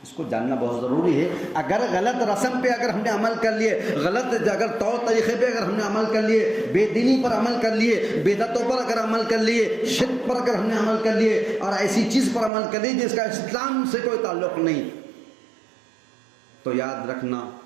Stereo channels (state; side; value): drops out; left; at 12.5 s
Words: اس کو جاننا بہت ضروری ہے. اگر غلط رسم پہ اگر ہم نے عمل کر لیے, غلط اگر طور طریقے پہ اگر ہم نے عمل کر لیے, بے دینی پر عمل کر لیے, بدعتوں پر اگر عمل کر لیے, شرک پر اگر ہم نے عمل کر لیے, اور ایسی چیز پر عمل کر لی جس کا اسلام سے کوئی تعلق نہیں, تو یاد رکھنا